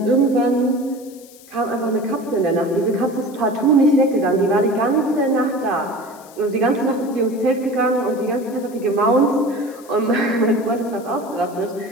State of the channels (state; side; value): noise; left; hiss, 23 dB below the sound